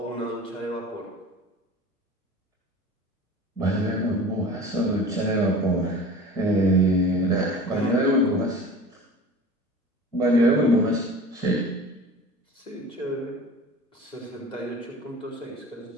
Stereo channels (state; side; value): normal; both; correlation 0.39